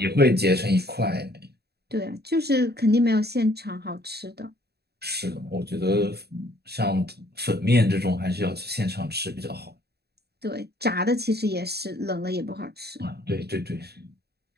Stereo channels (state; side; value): late; left; 0.47 ms